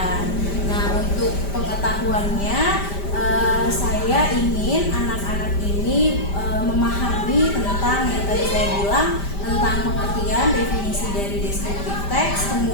Nah, untuk pengetahuannya saya ingin anak-anak ini memahami tentang yang tadi saya bilang tentang pengertian definisi dari descriptive text,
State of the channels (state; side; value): late; right; 5.1 ms